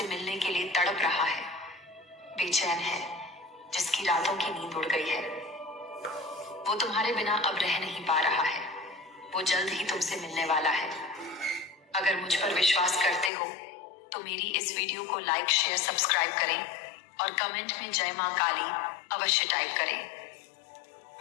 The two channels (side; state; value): right; drops out; at 13.3 s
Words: मिलने के लिए तड़प रहा है, बेचैन है, जिसकी रातों की नींद उड़ गई है। वो तुम्हारे बिना अब रह नहीं पा रहा है। वो जल्द ही तुमसे मिलने वाला है। अगर मुझ पर विश्वास करते हो तो मेरी इस वीडियो को लाइक, शेयर, सब्सक्राइब करें और कमेंट में जय मां काली अवश्य टाइप करें।